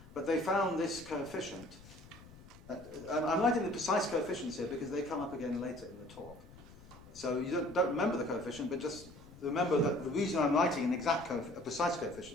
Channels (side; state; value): left; noise; rumble, 20 dB below the sound